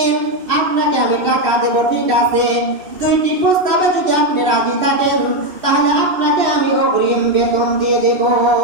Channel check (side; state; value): left; late; 2.7 ms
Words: আপনাকে আমি টাকা দেব, ঠিক আছে, 2টি প্রস্তাবে যদি আপনি রাজি থাকেন তাহলে আপনাকে আমি অগ্রিম বেতন দিয়ে দেব।